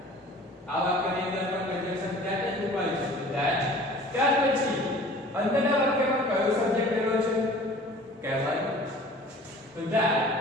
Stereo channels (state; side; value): normal; both; correlation 0.46